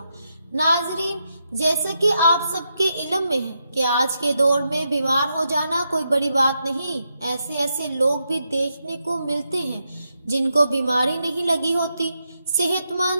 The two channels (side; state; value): both; inverted; correlation -0.84